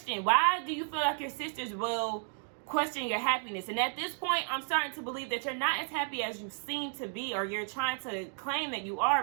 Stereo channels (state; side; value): silent; left; 56 dB below the other